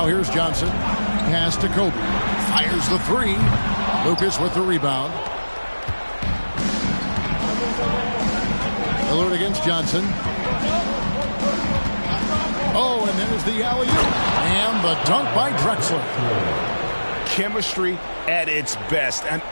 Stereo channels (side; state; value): both; inverted; correlation -1.00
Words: here's Johnson. Pass to Kobe. Fires the three. Lucas with the rebound. Lillard against Johnson. Oh, and there's the alley-oop. And the dunk by Drexler. Chemistry at its best. An